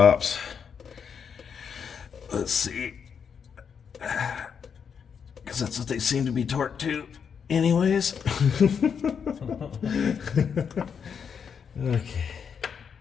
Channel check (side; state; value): right; quieter; 6.9 dB